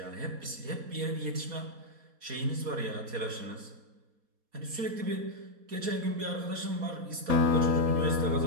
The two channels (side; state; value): left; late; 4.2 ms